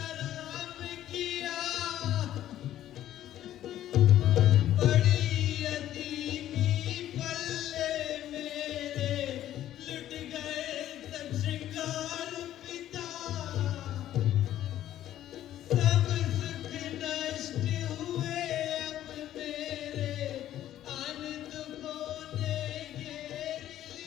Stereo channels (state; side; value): quieter; right; 12.4 dB